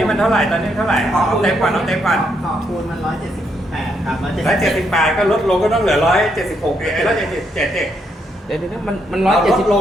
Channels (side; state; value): both; normal; correlation 0.76